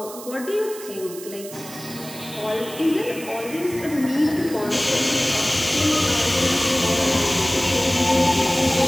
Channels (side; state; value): right; noise; hiss, 14 dB below the sound